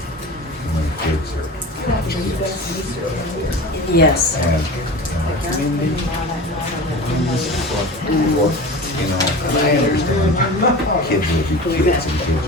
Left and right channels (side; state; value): both; normal; correlation 0.33